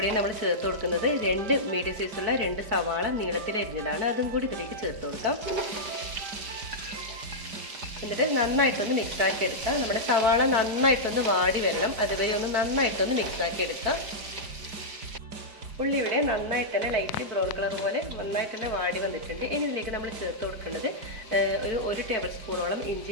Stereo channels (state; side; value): late; left; 4.5 ms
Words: നമ്മൾ ചേർത്ത് കൊടുക്കുന്നത് 2 മീഡിയം സൈസുള്ള 2 സവാള നീളത്തിൽ അരിഞ്ഞതാണ്. അതും കൂടി ഇതിലേക്ക് ചേർത്ത് കൊടുക്കാം. എന്നിട്ട് നന്നായിട്ടൊന്ന് മിക്സാക്കി എടുക്കാം. നമ്മുടെ സവാള നന്നായിട്ടൊന്ന് വാടി വരണം, അതുവരെ ഒന്ന് നന്നായിട്ടൊന്ന് മിക്സാക്കി എടുക്കാം. ഉള്ളി ഇവിടെ നന്നായിട്ട് തന്നെ ലൈറ്റ് ബ്രൗൺ കളർ പോലെ നന്നായിട്ട് തന്നെ വാടി വന്നിട്ടുണ്ട്. ഇനി ഇതിലേക്ക് നമ്മൾ ചേർത്ത് കൊടുക്കേണ്ടത് ഒരു ടേബിൾ സ്പൂണോളം ഇഞ്ചി